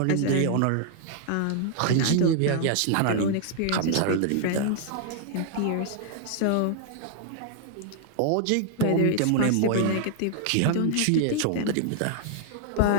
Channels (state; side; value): different; both; correlation -0.01